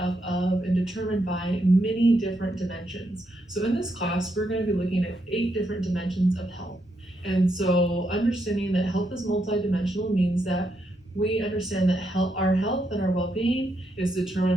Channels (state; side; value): normal; both; correlation 0.80